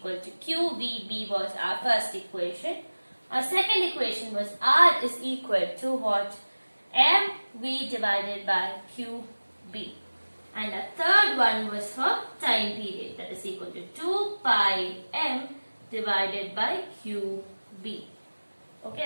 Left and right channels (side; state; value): both; inverted; correlation -1.00